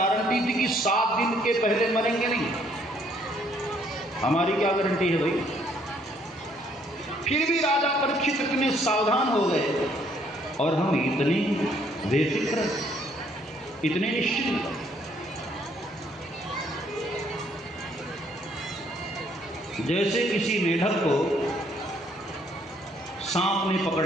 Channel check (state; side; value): normal; both; correlation 0.66